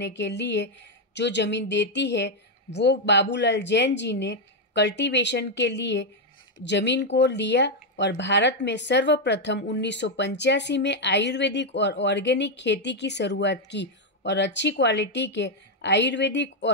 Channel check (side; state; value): both; normal; correlation 0.02